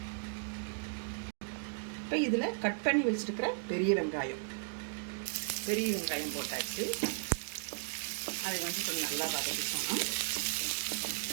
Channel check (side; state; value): left; silent; digital silence